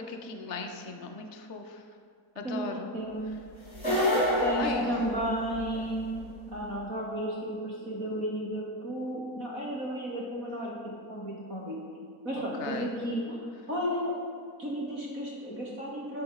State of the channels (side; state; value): left; late; 4.0 ms